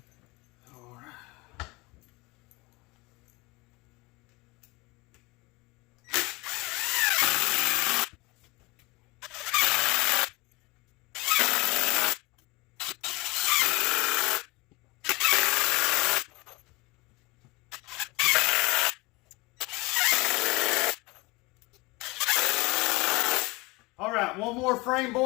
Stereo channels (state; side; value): quieter; right; 24.1 dB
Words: All right, one more frame